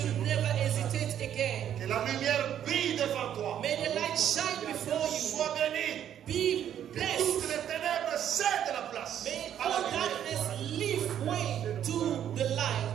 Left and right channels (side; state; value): left; quieter; 10.1 dB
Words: never hesitate again. Que la lumière brille devant toi. May the light shine before you. Sois béni. Be Toutes blessed. les ténèbres cèdent la place May à la all lumière. darkness leave way to the